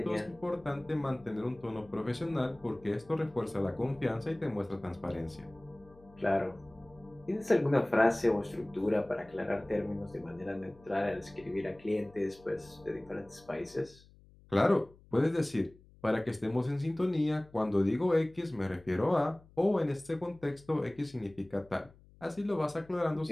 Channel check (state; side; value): noise; left; hum, 25 dB below the sound